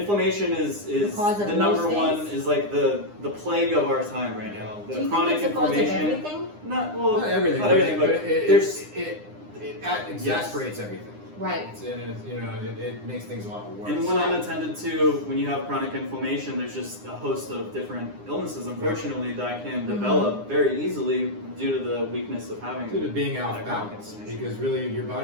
is the number one, is like the plague of our time right now. The Do you chronic think it's the cause of inflammation. everything? Not everything. Not everything, but it exasperates everything. Right. It makes things a lot worse. And when unattended to, when you have chronic inflammation, there's just a host of different illnesses, unfortunately, that can develop very easily due to the weakness of having. Due to being off balance, because really your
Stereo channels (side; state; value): left; late; 9.8 ms